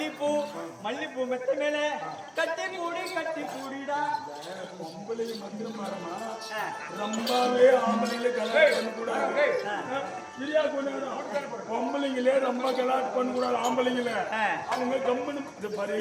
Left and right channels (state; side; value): identical; both; correlation 1.00